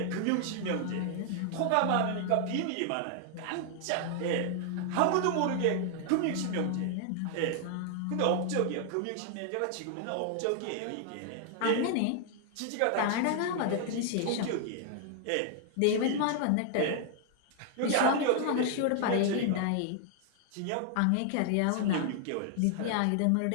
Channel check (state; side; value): different; both; correlation 0.00